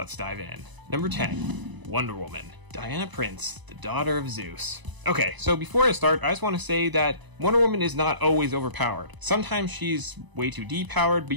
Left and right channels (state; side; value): late; left; 1.0 ms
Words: dive in. Number 10, Wonder Woman. Diana Prince, the daughter of Zeus. Okay, so before I start, I just want to say that Wonder Woman is not always overpowered. Sometimes she's way too depowered, but